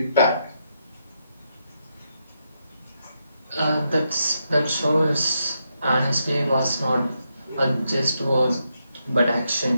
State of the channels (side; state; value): both; inverted; correlation -0.82